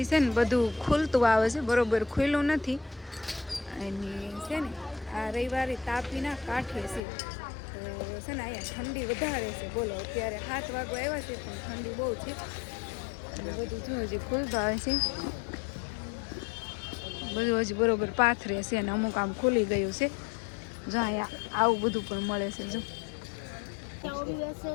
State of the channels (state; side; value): drops out; right; at 7.0 s